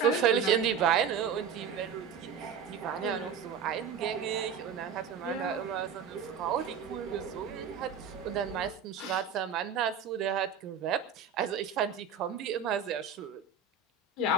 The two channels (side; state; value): left; quieter; 6.6 dB